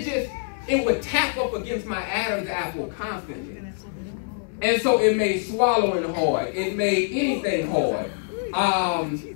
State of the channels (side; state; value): right; silent; digital silence